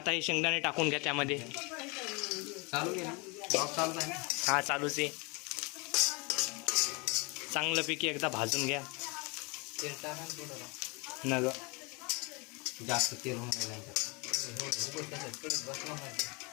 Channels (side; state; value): right; quieter; 29.6 dB